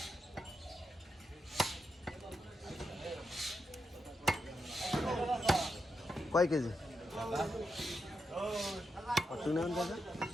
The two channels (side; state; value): both; normal; correlation 0.85